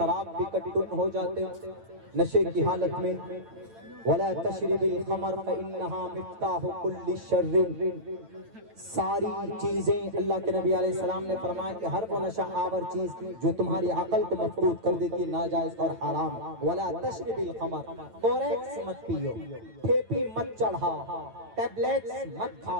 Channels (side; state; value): left; late; 9.0 ms